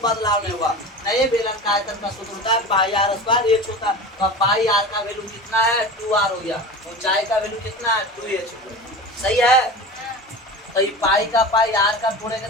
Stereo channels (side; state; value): both; normal; correlation 0.32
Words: नहीं हुआ। नए बेलन का आयतन का सूत्र होता है पाई आर स्क्वायर h होता है। तो पाई आर का वैल्यू कितना है? 2r हो गया। ऊंचाई का वैल्यू कितना है? 2h। सही है। तो ये पाई का पाई आर का जोड़ेंगे